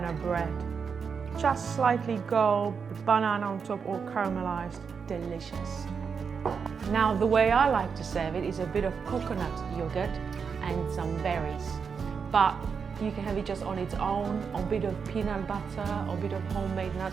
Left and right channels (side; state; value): left; quieter; 6.0 dB